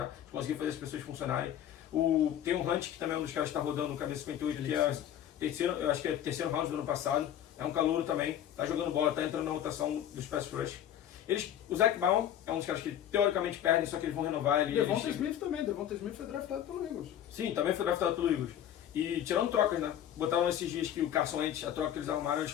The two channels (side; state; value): right; quieter; 10.6 dB